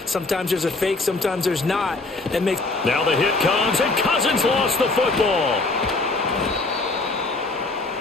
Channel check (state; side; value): quieter; right; 3.3 dB